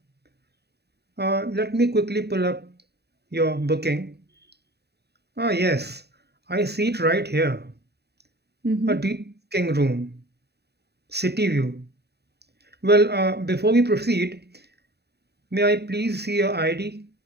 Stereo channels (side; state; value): left; late; 0.48 ms